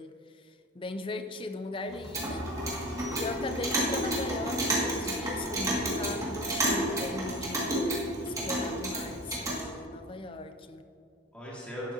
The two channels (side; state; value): both; normal; correlation 0.34